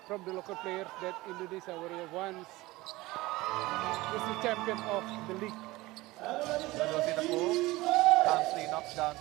from the local players that Indonesia Warrior once was the champion of the league. Dodo Sitapu calmly knocks down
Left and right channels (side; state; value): left; quieter; 19.9 dB